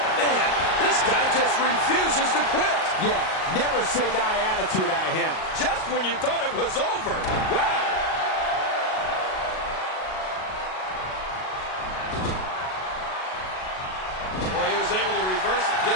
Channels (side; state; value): right; late; 38 ms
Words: Man, this guy just refuses to quit. Yeah, never say die attitude out of him. Just when you thought it was over. Wow. Boy, he was able to reverse it,